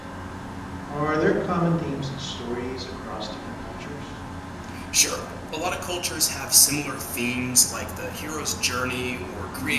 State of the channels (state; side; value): identical; both; correlation 1.00